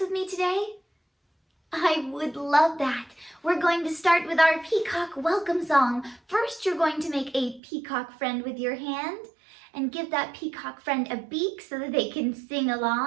with me today? I would love that. We're going to start with our peacock welcome song. First, you're going to make a peacock friend with your hand and give that peacock friend a beak so that they can sing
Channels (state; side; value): drops out; left; at 7.6 s